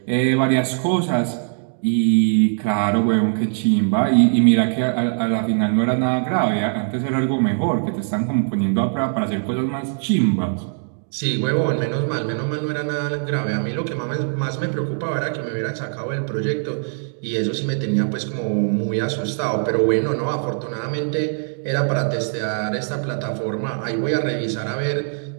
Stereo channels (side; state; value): left; silent; 65 dB below the other